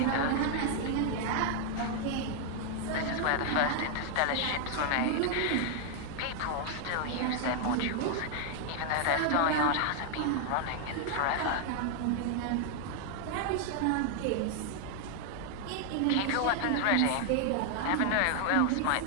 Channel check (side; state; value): both; different; correlation 0.00